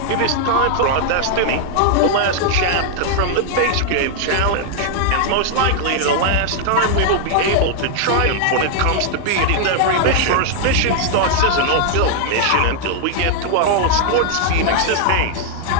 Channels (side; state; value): both; different; correlation -0.01